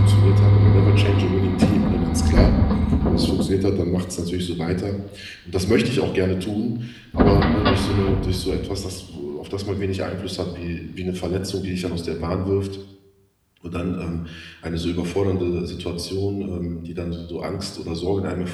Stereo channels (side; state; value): both; identical; correlation 1.00